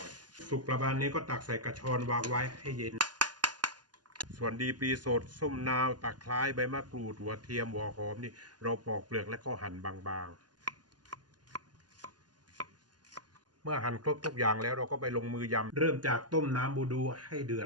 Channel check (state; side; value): late; left; 0.70 ms